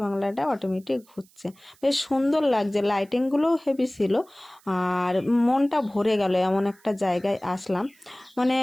বাংলাটা অটোমেটিক ঘুরছে, বেশ সুন্দর লাগছে। লাইটিংগুলোও হেভি ছিল, আর মনটা ভরে গেল। এমন একটা জায়গায় আসলাম, মানে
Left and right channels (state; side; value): noise; right; hiss, 30 dB below the sound